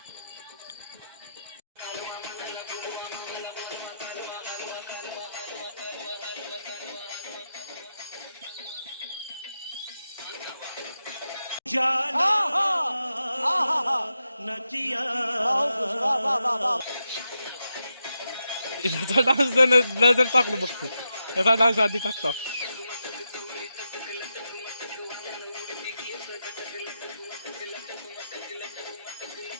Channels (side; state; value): both; inverted; correlation -0.87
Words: याचा डान्स नजर टाकलो बघतो, याचा डान्स आधी टाकतो।